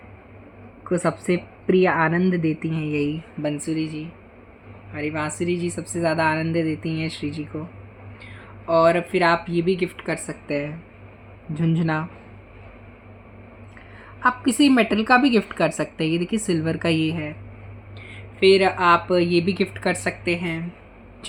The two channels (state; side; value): identical; both; correlation 1.00